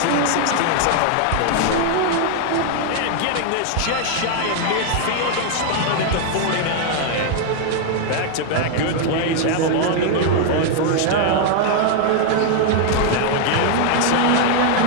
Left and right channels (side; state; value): both; different; correlation 0.00